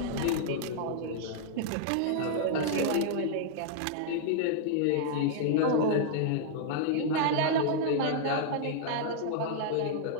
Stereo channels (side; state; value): both; different; correlation -0.01